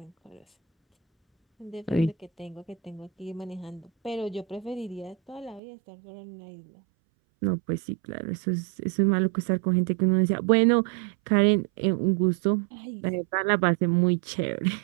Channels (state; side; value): drops out; left; at 5.6 s